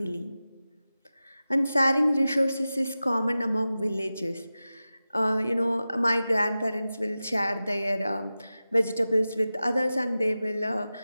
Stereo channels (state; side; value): inverted; both; correlation -0.95